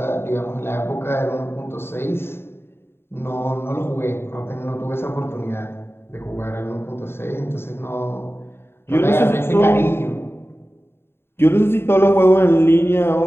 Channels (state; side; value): late; right; 0.11 ms